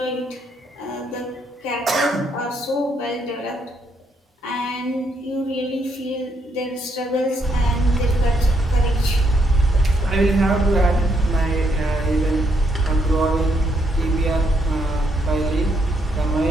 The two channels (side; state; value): both; normal; correlation 0.74